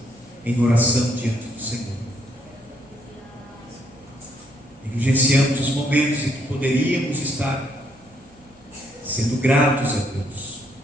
em oração diante do Senhor. Negligenciamos os momentos em que poderíamos estar sendo gratos a Deus.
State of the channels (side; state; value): both; normal; correlation 0.70